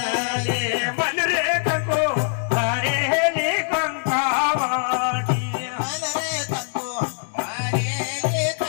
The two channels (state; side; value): silent; right; digital silence